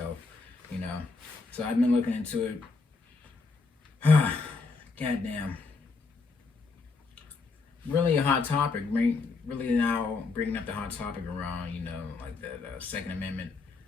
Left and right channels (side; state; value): right; quieter; 4.2 dB